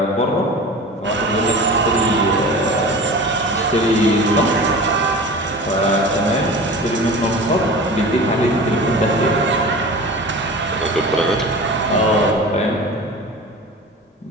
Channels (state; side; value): normal; both; correlation 0.36